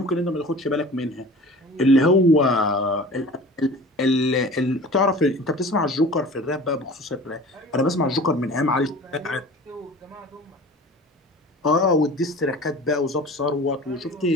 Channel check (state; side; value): normal; both; correlation 0.41